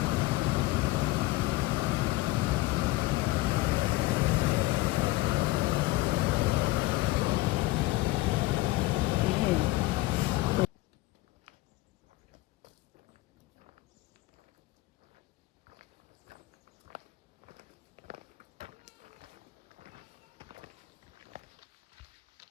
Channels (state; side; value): quieter; right; 19.4 dB